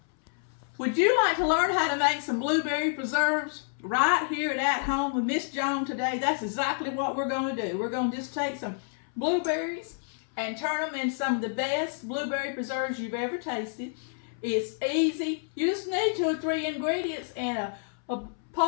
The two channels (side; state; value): right; silent; 59 dB below the other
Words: Would you like to learn how to make some blueberry preserves right here at home with Miss Joan today? That's exactly what we're going to do. We're going to just take some blueberries and turn them into some of the best blueberry preserves you've ever tasted. It's easy. You just need 2 or 3 ingredients and a